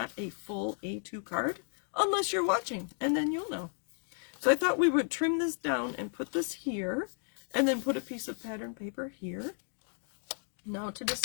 a full A2 card, unless you're watching, and then you'll know. So I thought we would trim this down and put this here, and then put a piece of pattern paper here. Now to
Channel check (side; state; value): right; silent; 56 dB below the other